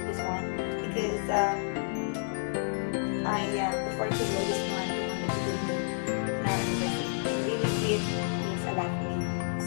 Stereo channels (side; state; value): right; silent; digital silence